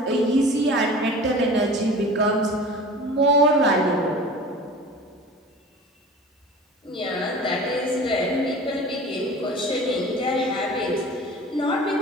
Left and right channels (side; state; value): both; normal; correlation 0.40